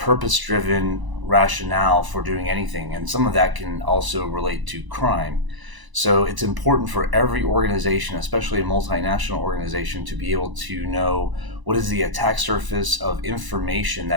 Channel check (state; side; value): late; left; 1.0 ms